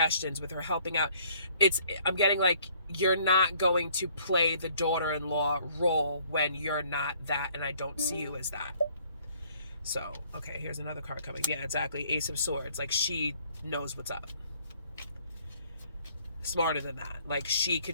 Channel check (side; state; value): both; inverted; correlation -0.61